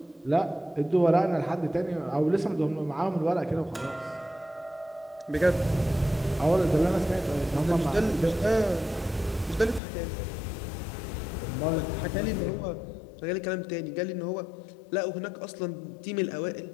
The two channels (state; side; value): drops out; right; at 9.8 s